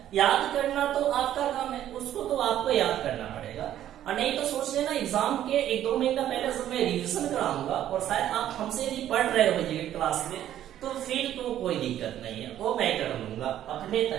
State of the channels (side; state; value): left; quieter; 11.7 dB